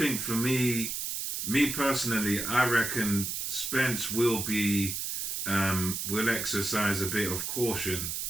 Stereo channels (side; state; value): right; noise; hiss, 3 dB below the sound